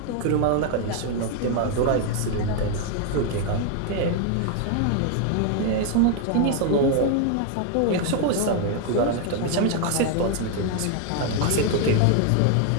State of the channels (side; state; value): both; different; correlation 0.00